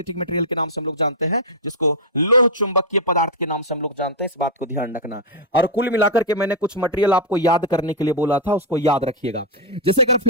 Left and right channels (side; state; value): both; normal; correlation -0.03